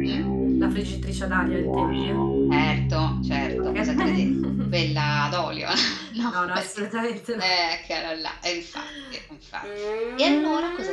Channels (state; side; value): identical; both; correlation 1.00